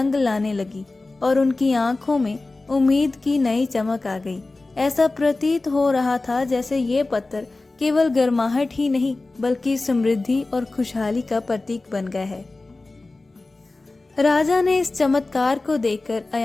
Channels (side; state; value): right; quieter; 3.2 dB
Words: लाने लगी और उनकी आंखों में उम्मीद की नई चमक आ गई। ऐसा प्रतीत हो रहा था जैसे ये पत्थर केवल गर्माहट ही नहीं, बल्कि समृद्धि और खुशहाली का प्रतीक बन गया है। राजा ने इस चमत्कार को देखकर